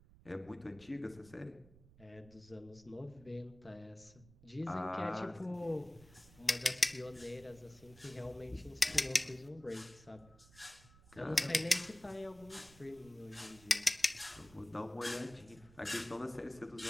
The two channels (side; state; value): right; noise; rumble, 23 dB below the sound